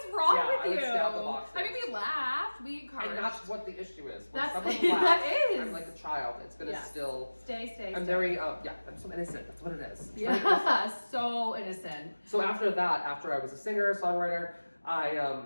is wrong Yeah, I with would you?" stab the boxes. I mean, we laughed, we encouraged. And that's what the issue is. When That's- someone that laughs, is. I'm like a child. It's gonna Yes. still. stay. I'm very I'm so innocent. That's what it is. Yeah, so innocent. So after that, after I was a singer, songwriter,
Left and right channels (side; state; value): both; inverted; correlation -1.00